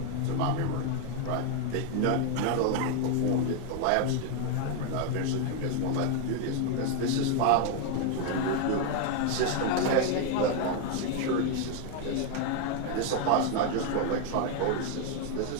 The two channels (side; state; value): both; different; correlation 0.01